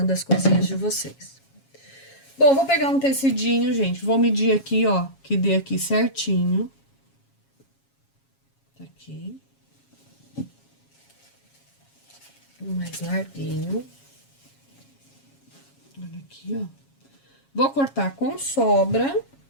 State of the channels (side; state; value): right; late; 7.3 ms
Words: as coisinhas de vocês. Bom, vou pegar um tecidinho, gente. Vou medir aqui, ó, que dê aqui certinho. Tá aqui. Um mais larguinho. Olha aqui, ó. Vou cortar com sobra.